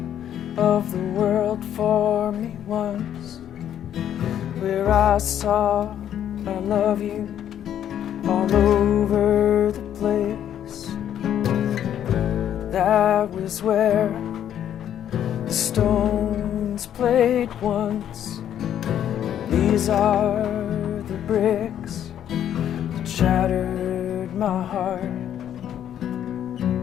of the world for me once, where I saw I love you all over the place. That was where the stones played once. These are the bricks that shattered my heart.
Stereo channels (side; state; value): right; quieter; 10.3 dB